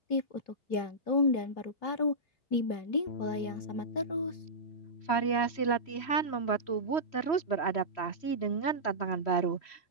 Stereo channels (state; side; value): late; right; 3.1 ms